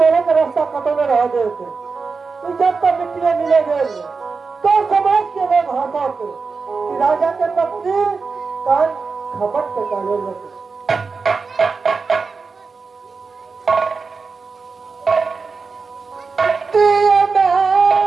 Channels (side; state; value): left; quieter; 4.7 dB